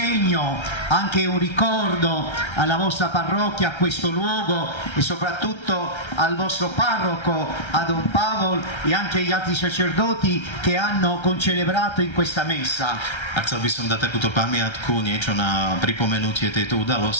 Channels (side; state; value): right; late; 1.3 ms